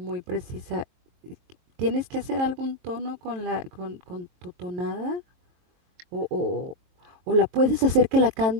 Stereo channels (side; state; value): left; late; 22 ms